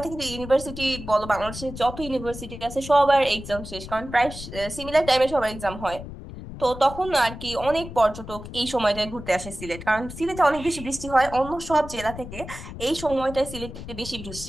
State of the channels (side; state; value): left; noise; rumble, 11 dB below the sound